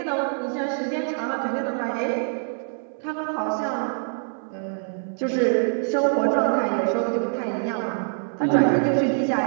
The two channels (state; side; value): silent; left; digital silence